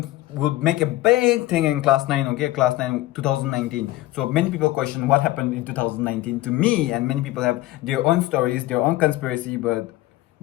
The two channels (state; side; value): quieter; right; 17.0 dB